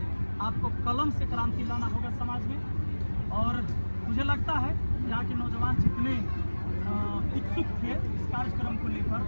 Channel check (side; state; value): both; inverted; correlation -1.00